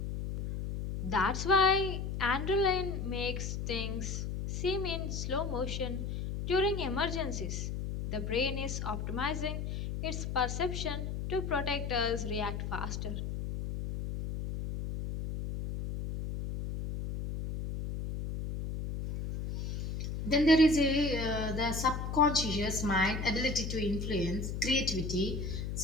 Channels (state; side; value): noise; left; hum, 4 dB below the sound